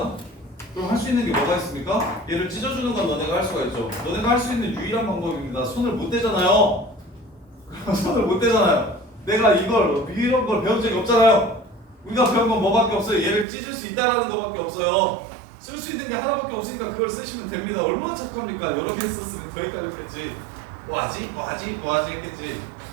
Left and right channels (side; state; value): left; drops out; at 13.5 s